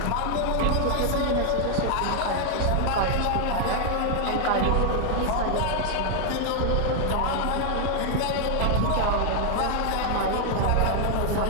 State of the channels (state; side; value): different; both; correlation 0.00